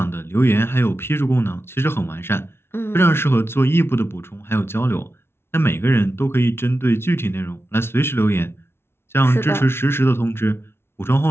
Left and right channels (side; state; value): right; late; 0.12 ms